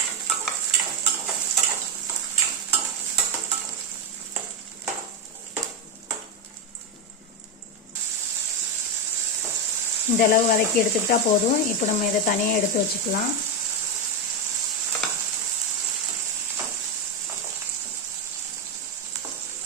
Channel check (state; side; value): normal; both; correlation 0.07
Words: இந்த அளவு வதக்கி எடுத்துக்கிட்டா போதும். இப்போ நம்ம இதை தனியாக எடுத்து வச்சுக்கலாம்.